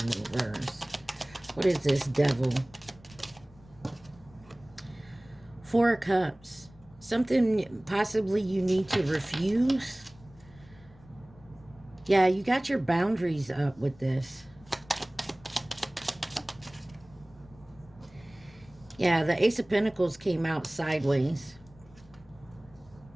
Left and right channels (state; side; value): noise; left; rumble, 25 dB below the sound